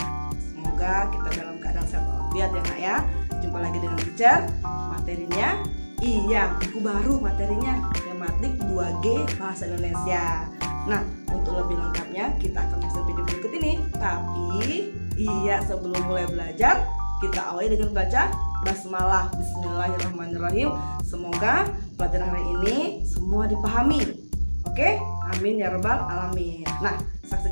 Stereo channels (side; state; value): both; inverted; correlation -1.00